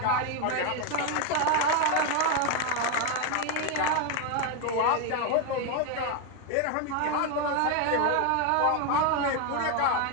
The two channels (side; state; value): both; different; correlation 0.02